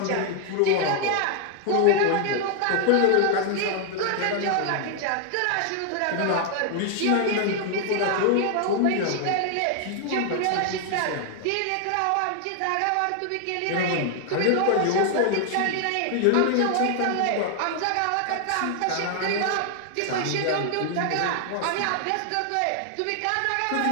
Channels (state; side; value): different; both; correlation 0.00